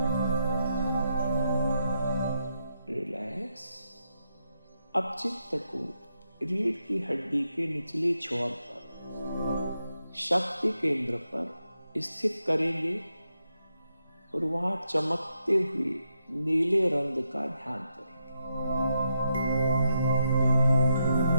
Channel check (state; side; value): inverted; both; correlation -0.83